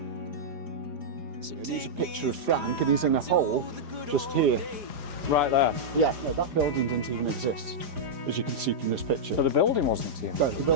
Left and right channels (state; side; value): late; left; 4.9 ms